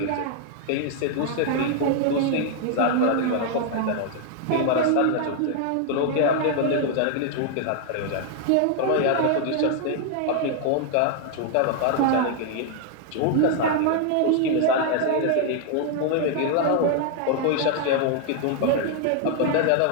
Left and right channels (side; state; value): both; different; correlation 0.00